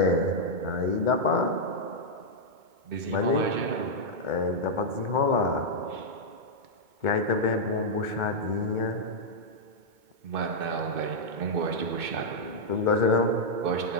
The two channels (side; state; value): left; late; 2.2 ms